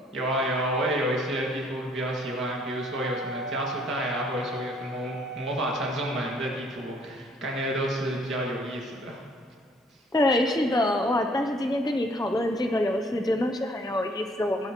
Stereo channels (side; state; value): both; normal; correlation 0.61